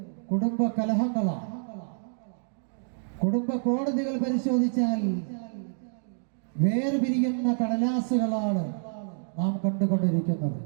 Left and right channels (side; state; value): left; silent; digital silence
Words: കുടുംബ കലഹങ്ങളാണ്. കുടുംബ കോടതികൾ പരിശോധിച്ചാൽ വേർപിരിയുന്ന കടലാസുകളാണ് നാം കണ്ടുകൊണ്ടിരിക്കുന്നത്.